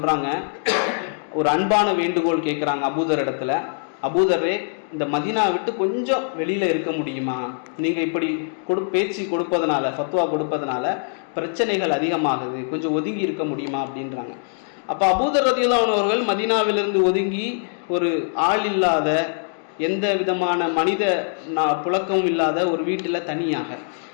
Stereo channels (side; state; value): right; silent; digital silence